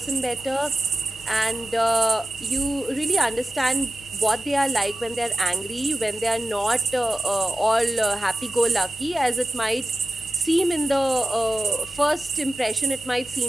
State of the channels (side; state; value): both; normal; correlation 0.93